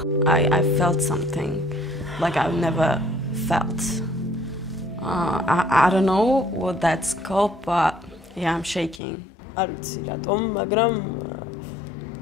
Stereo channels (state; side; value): drops out; right; at 9.0 s